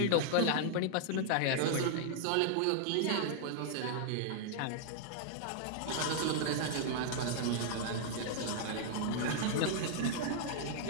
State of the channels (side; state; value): both; different; correlation -0.01